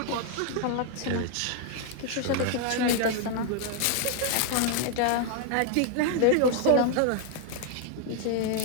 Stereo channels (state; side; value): different; both; correlation 0.00